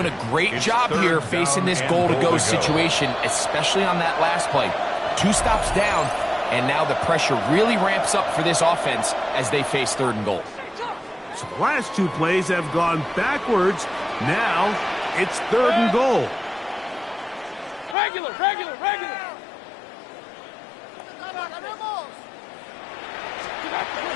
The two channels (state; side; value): drops out; right; at 17.9 s